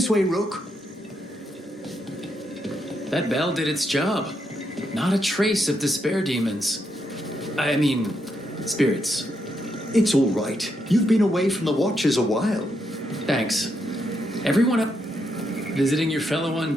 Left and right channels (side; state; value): both; normal; correlation 0.80